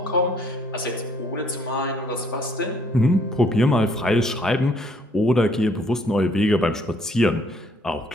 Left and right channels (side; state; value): both; normal; correlation 0.64